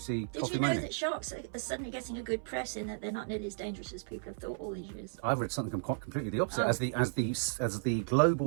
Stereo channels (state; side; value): silent; left; 55 dB below the other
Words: Did Coffee you know Moaning? that sharks are suddenly getting a good press in that they're not nearly as dangerous as people have thought all these years? I've read something quite completely the opposite. Oh. As the